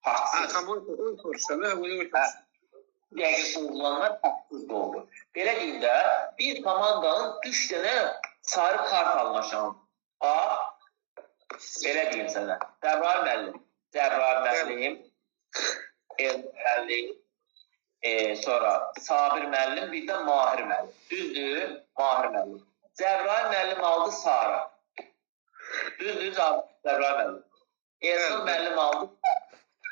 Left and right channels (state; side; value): silent; left; digital silence